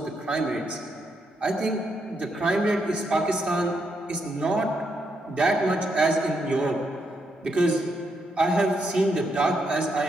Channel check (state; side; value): normal; both; correlation 0.79